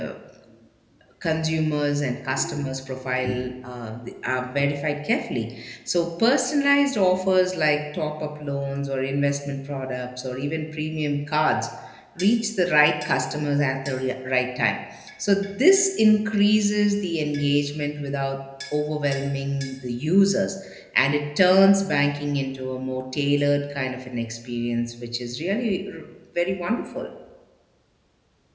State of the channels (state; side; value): identical; both; correlation 1.00